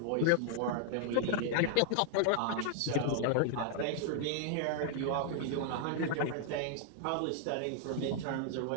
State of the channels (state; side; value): different; both; correlation 0.00